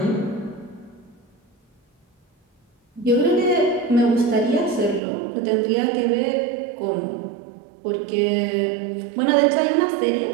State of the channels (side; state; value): left; drops out; at 5.0 s